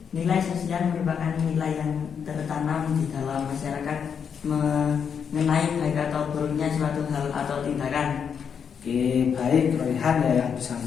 Nilai sosial merupakan nilai yang tertanam di dalam masyarakat mengenai baik atau buruknya suatu hal atau tindakan. Oke, baik, Royhan ya yang bisa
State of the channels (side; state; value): right; quieter; 7.1 dB